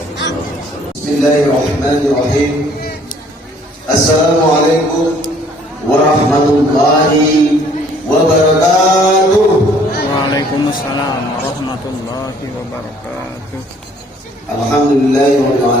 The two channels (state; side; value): normal; both; correlation 0.59